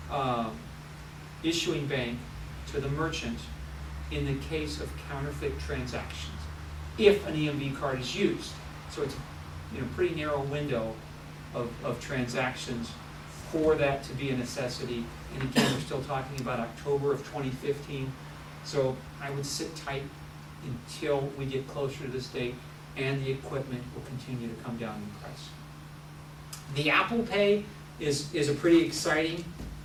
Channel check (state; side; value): identical; both; correlation 1.00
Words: issuing bank to the merchant in the case of counterfeit transactions, if an EMV card is used. So it's a pretty narrow window of transactions for that to be a necessity. And again, we're still talking about October of 2015. So I would sit tight until we get closer to this date, and the equipment will continue to come down in price. The Apple Pay is a pretty exciting